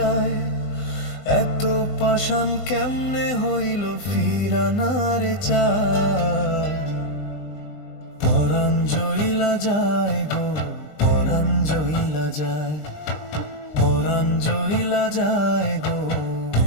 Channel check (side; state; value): right; late; 20 ms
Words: এত পাষাণ কেমনে হইল ফিরা না রে চায়। পরাণ জইলা যায় গো পরাণ জইলা যায়, পরাণ জইলা যায় গো